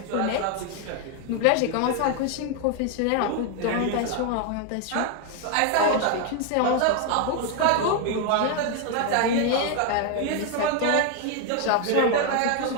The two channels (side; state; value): both; different; correlation 0.01